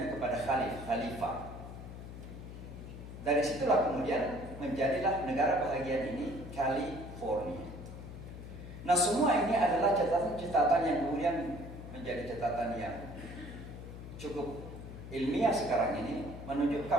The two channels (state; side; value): noise; left; hum, 11 dB below the sound